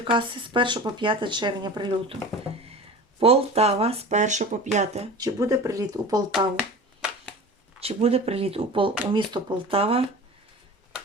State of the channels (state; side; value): normal; both; correlation 0.35